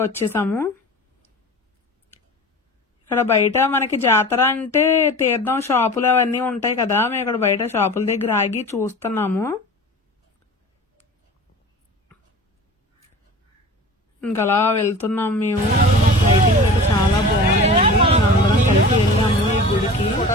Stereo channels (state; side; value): normal; both; correlation 0.37